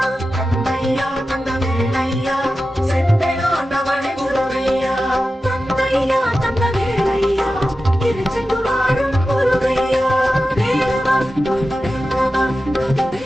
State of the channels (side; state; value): both; normal; correlation 0.93